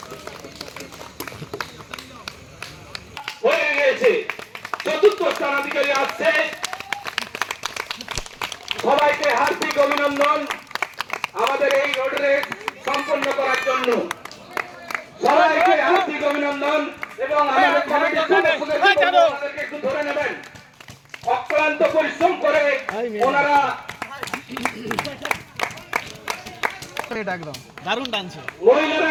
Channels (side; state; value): both; identical; correlation 1.00